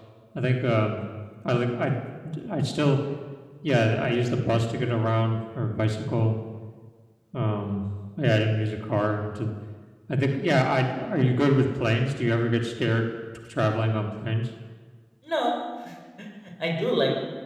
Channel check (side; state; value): both; identical; correlation 1.00